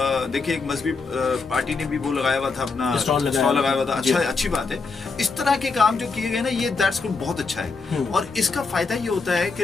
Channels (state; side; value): quieter; right; 4.4 dB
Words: देखिए एक मजहबी पार्टी ने भी वो लगाया हुआ था, अपना स्टॉल लगाया हुआ था। अच्छा, अच्छी बात है। इस तरह के काम जो किए गए ना, ये दैट्स गुड, बहुत अच्छा है। और इसका फायदा ये होता है कि